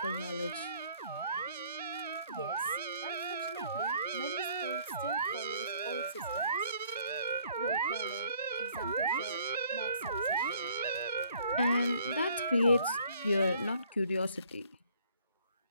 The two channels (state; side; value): inverted; both; correlation -0.61